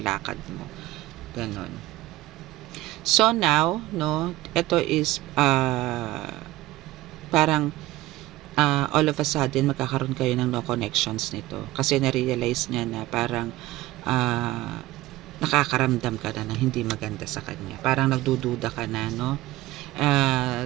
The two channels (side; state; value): left; quieter; 17.6 dB